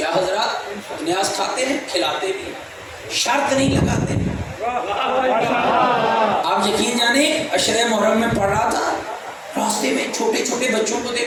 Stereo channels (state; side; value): identical; both; correlation 1.00